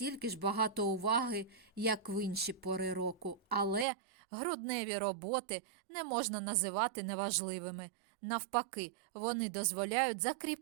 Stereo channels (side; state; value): left; drops out; at 3.9 s